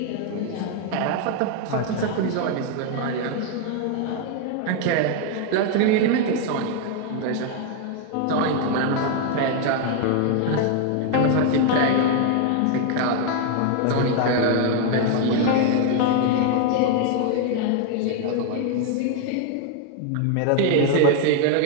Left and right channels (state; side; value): different; both; correlation 0.01